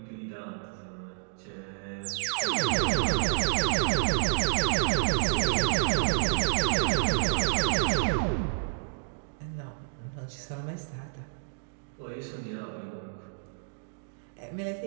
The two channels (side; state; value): left; silent; digital silence